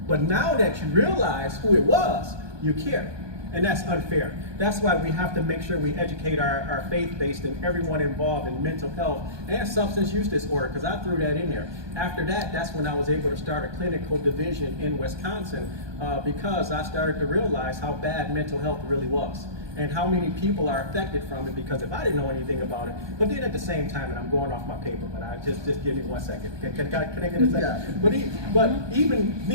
But now that you realize who it was, you care. And that's unfair. That's why we have to make sure we educate our faith-based and everyone involved in mental health and substance use disorder, because I threw that in there. After that, that's when I was able to start a clinical division in Wisconsin, because I started to realize how bad mental health really was, and how many people are affected from it, because if I didn't know anything about it, but then at the same time, and I'm going off my paper, but I just give me 1 second. Can I get a second? Yeah. But even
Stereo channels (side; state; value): left; late; 1.2 ms